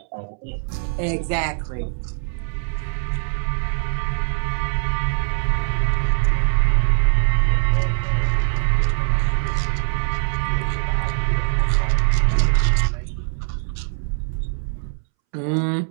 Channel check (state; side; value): silent; left; 64 dB below the other